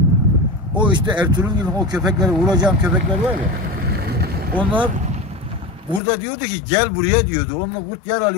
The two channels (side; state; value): right; drops out; at 6.0 s